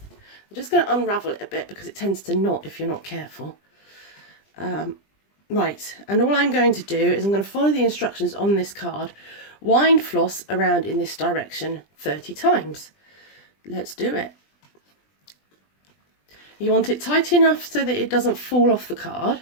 just going to unravel it a bit because it tends to knot if you're not careful. Right, and all I'm going to do is I'm going to follow the instructions on this card. Wind floss around in this direction 30 times. Let's do it. You want it tight enough so that it doesn't fall off the card,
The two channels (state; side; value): late; right; 20 ms